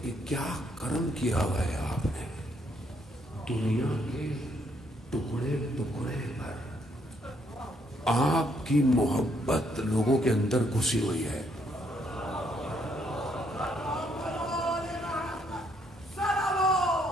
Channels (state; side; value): normal; both; correlation 0.71